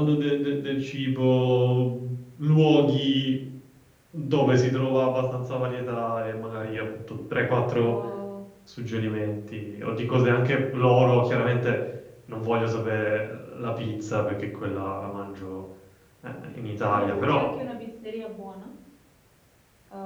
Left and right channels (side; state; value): both; identical; correlation 1.00